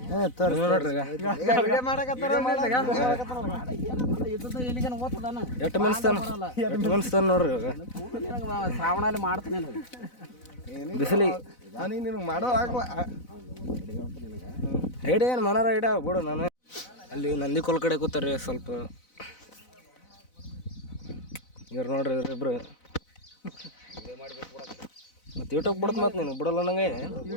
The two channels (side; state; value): right; late; 4.0 ms